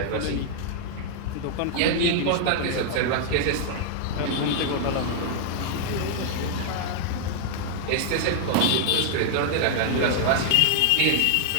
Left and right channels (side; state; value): both; different; correlation 0.00